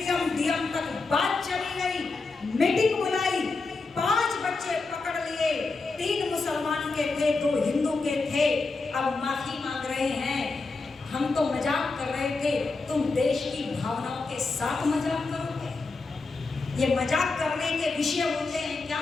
डीएम तक बात चली गई, मीटिंग बुलाई, 5 बच्चे पकड़ लिए, 3 मुसलमान के थे, 2 हिंदू के थे। अब माफी मांग रहे हैं। हम तो मजाक कर रहे थे, तुम देश की भावनाओं के साथ मजाक करोगे? ये मजाक करने के विषय होते हैं क्या?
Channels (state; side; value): quieter; right; 3.9 dB